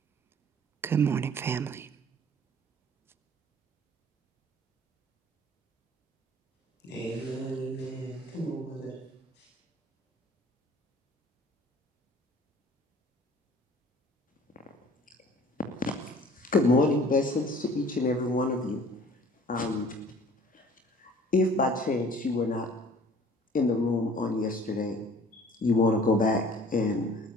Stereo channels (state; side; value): normal; both; correlation 0.50